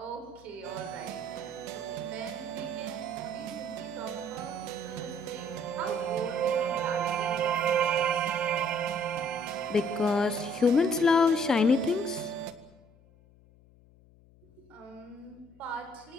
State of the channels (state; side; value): noise; left; hum, 27 dB below the sound